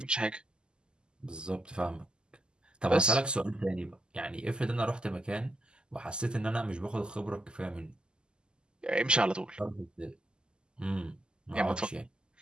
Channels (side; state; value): left; late; 0.048 ms